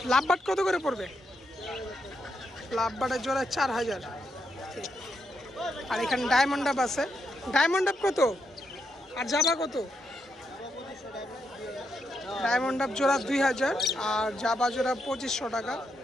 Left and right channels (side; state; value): both; normal; correlation 0.81